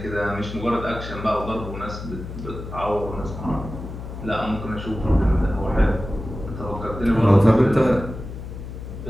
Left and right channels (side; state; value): left; noise; hum, 10 dB below the sound